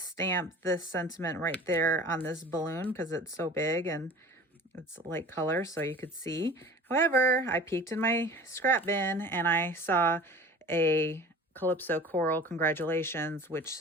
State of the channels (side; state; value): both; normal; correlation 0.41